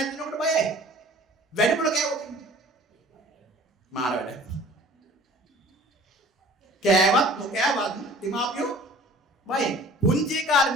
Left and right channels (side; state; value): both; normal; correlation 0.48